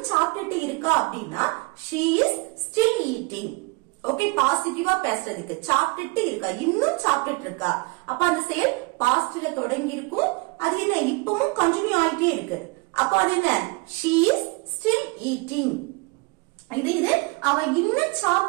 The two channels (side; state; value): left; quieter; 26.8 dB